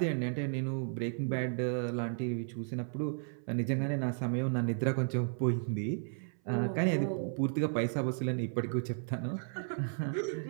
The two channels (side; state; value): left; silent; 55 dB below the other